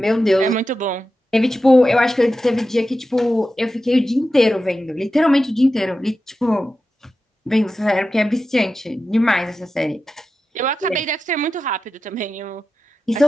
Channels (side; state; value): both; normal; correlation 0.92